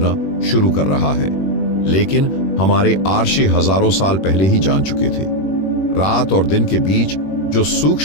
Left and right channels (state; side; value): late; right; 21 ms